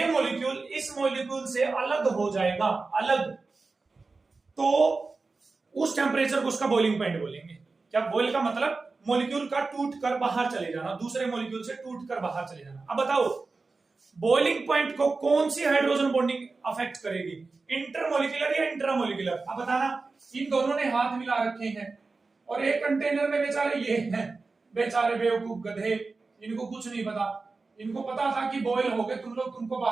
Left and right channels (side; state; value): left; quieter; 3.9 dB